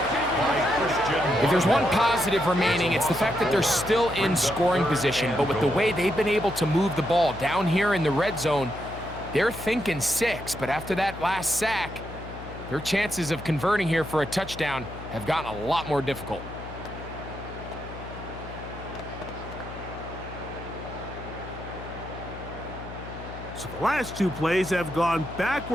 If there's one positive remaining, it's the fact that they're still in scoring position. But with the way they've been able to move the ball down here in the red zone, they're thinking 6. But after that last sack, their chances of converting here for a touchdown have gotten a lot more difficult. So the last two plays have gone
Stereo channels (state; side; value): noise; left; hum, 12 dB below the sound